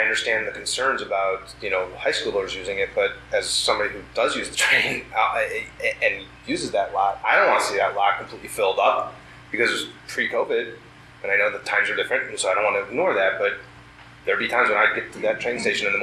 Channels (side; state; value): both; identical; correlation 1.00